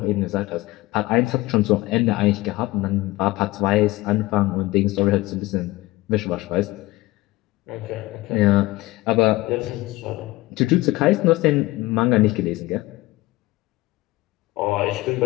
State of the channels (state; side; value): quieter; right; 19.6 dB